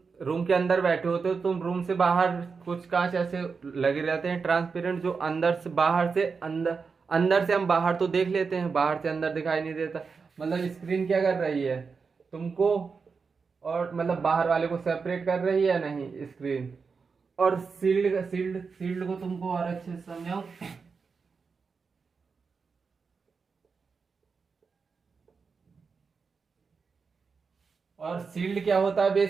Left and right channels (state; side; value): quieter; left; 5.1 dB